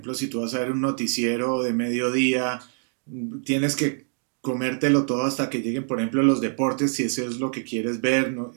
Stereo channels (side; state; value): left; silent; 62 dB below the other